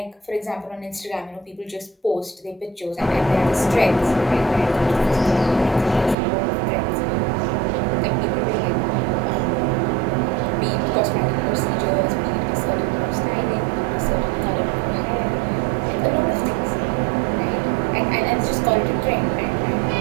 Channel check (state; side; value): drops out; left; at 6.2 s